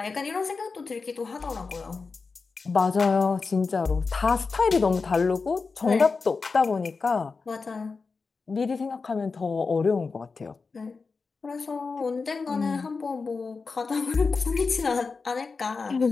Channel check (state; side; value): quieter; right; 4.5 dB